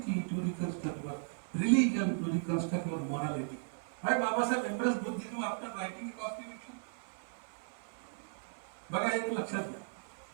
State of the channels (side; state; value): left; silent; 54 dB below the other